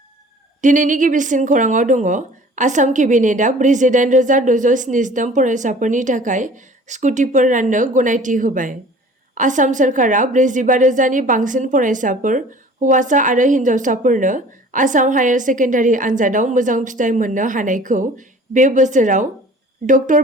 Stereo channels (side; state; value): both; normal; correlation 0.47